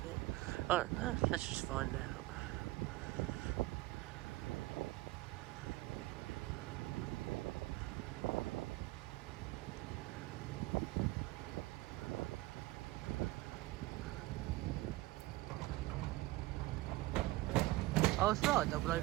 it? I don't know. Let's just find out. Oh, it's not 004.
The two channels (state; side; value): quieter; left; 19.0 dB